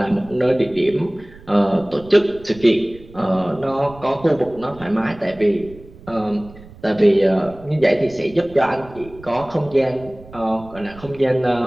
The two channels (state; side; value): noise; right; rumble, 20 dB below the sound